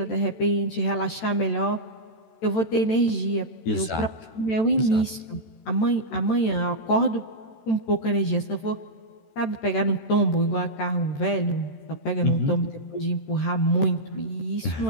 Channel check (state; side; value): late; right; 13 ms